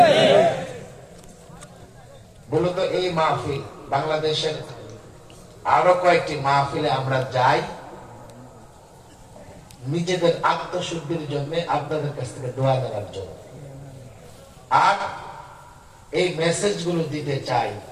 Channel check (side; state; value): both; identical; correlation 1.00